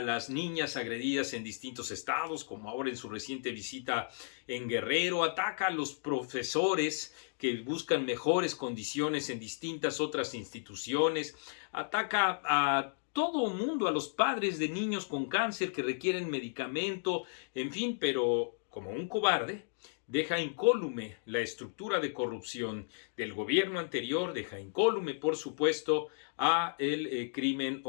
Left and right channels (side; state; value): right; silent; digital silence